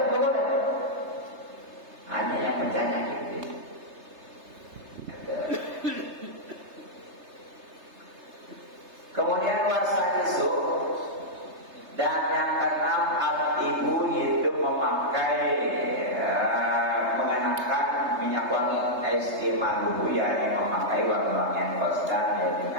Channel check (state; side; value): late; left; 3.3 ms